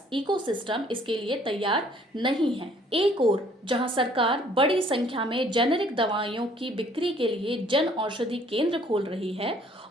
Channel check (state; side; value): normal; both; correlation 0.60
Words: इकोसिस्टम इसके लिए तैयार नहीं है। एक ओर जहां सरकार बड़ी संख्या में जेनेरिक दवाइयों की बिक्री के लिए जन औषधि केंद्र खोल रही है